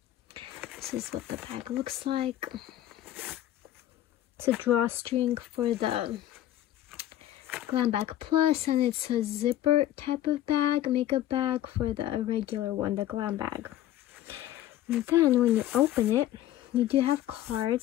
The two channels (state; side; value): quieter; right; 13.0 dB